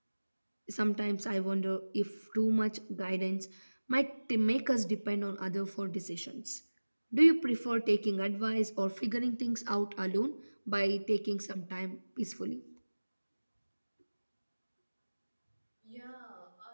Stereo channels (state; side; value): inverted; both; correlation -1.00